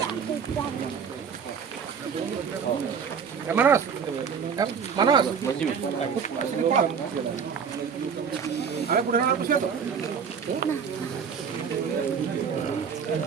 Manos, manos. Ada pura nak siapa?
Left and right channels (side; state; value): left; quieter; 6.6 dB